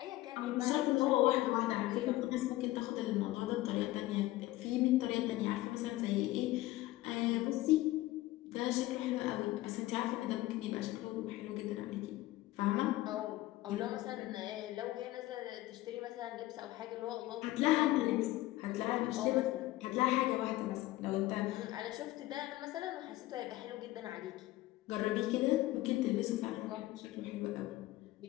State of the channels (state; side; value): quieter; right; 17.2 dB